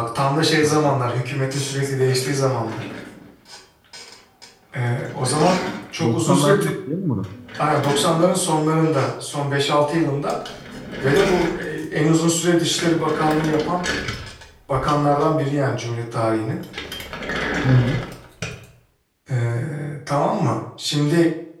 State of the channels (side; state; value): both; identical; correlation 1.00